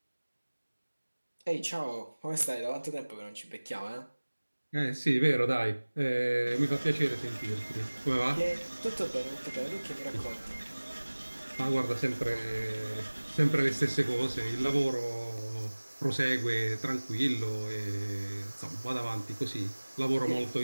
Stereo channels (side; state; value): both; inverted; correlation -1.00